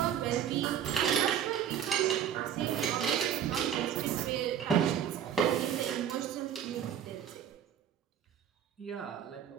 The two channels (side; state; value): left; quieter; 9.5 dB